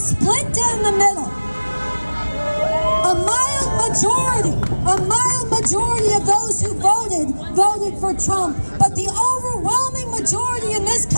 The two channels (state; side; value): inverted; both; correlation -1.00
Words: down the middle. A mild majority of those who voted for Trump. But the overwhelming majority in this